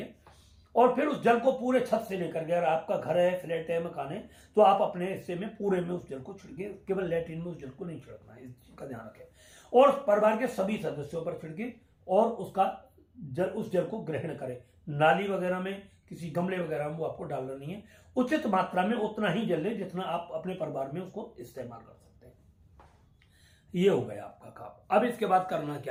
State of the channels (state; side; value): identical; both; correlation 1.00